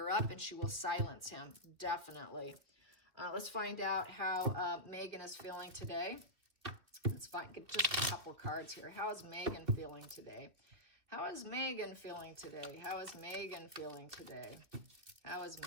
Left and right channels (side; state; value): left; late; 2.6 ms